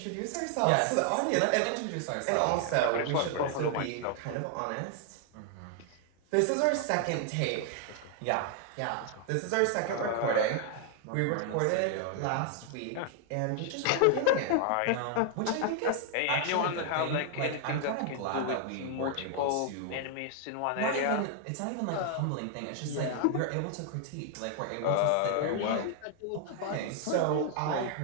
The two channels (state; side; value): different; both; correlation 0.00